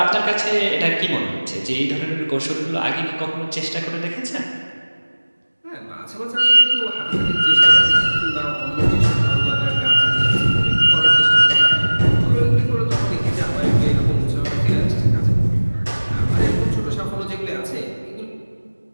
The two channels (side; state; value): both; inverted; correlation -1.00